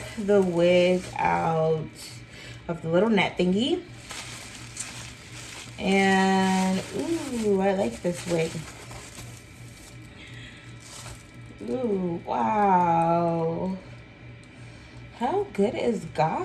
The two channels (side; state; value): both; identical; correlation 1.00